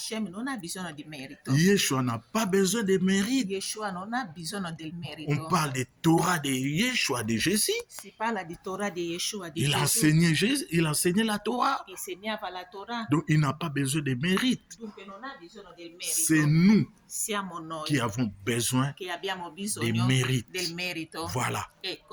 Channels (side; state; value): both; identical; correlation 1.00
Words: non ha bisogno di merito. Yeshua n'a pas besoin de mérite. Yeshua non ha bisogno del On merito. parle de Torah de Yeshua, de Jésus. Si parla di Torah di Yeshua, di Il Gesù. enseignait Jésus, il enseignait la Torah. Insegnava la Torah. Donc, il n'a pas besoin de mérite. Dunque non ha bisogno del C'est merito. nous Siamo noi qui avons besoin. che abbiamo Des bisogno mérites. del merito. Voilà.